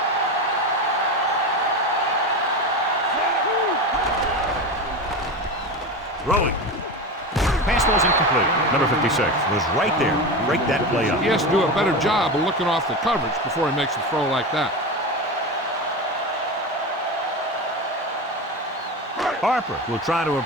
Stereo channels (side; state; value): both; normal; correlation 0.23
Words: Throwing. Pass ball's incomplete. Number 56 was right there. Break that play up. He has to do a better job of looking off the coverage before he makes a throw like that. Harper will try to